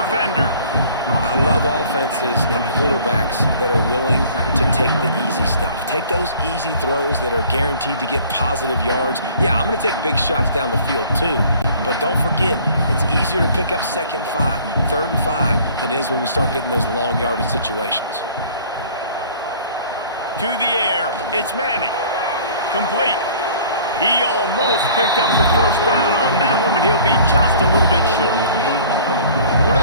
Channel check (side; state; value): both; inverted; correlation -0.51